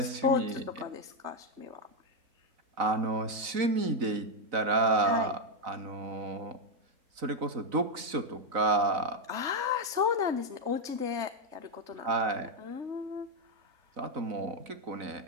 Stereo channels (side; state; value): left; late; 4.0 ms